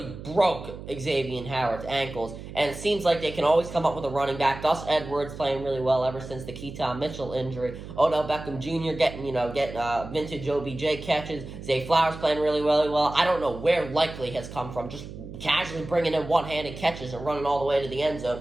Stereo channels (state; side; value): noise; right; hum, 12 dB below the sound